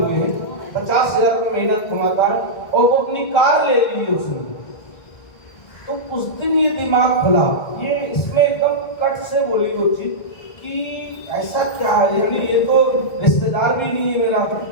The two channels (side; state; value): right; late; 1.7 ms